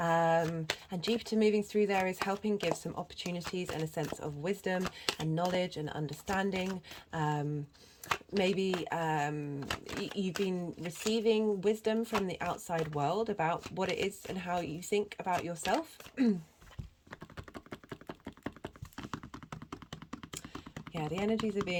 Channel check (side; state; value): both; identical; correlation 1.00